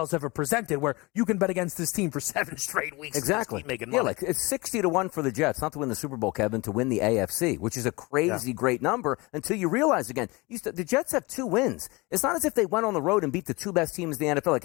ever presented where you can bet against this team for 7 straight weeks. Exactly. And making money. Yeah, like it's 60-1 for the Jets, not to win the Super Bowl, Kevin, to win the AFC, which is a crazy great number until you realize again, the Jets have 2 wins. It's not as if they went on the road and beat the 2 best teams in the NFL. Like,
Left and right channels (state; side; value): quieter; right; 24.6 dB